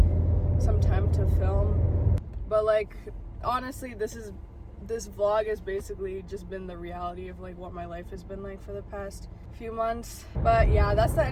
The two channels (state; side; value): identical; both; correlation 1.00